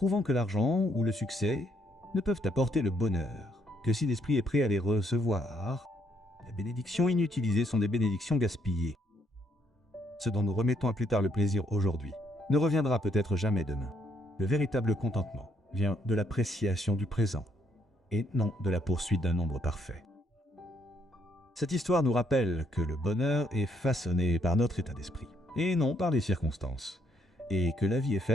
que l'argent ou le succès ne peuvent apporter le bonheur, que si l'esprit est prêt à les recevoir, les bénédictions inutilisées sont des bénédictions gaspillées. Ce dont nous remettons à plus tard le plaisir aujourd'hui ne reviendra peut-être jamais demain. Le véritable contentement vient de l'appréciation du présent et non de la poursuite d'un nombre parfait. Cette histoire nous rappelle que le bonheur est façonné par notre état d'esprit et non par les circonstances, et que la vie est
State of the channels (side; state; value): both; normal; correlation 0.72